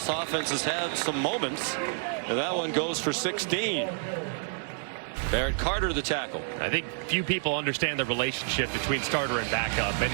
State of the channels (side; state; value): left; silent; 59 dB below the other